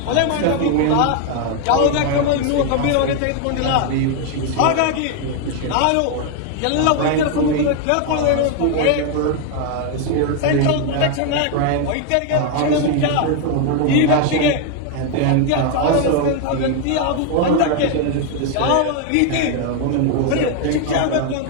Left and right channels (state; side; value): different; both; correlation 0.01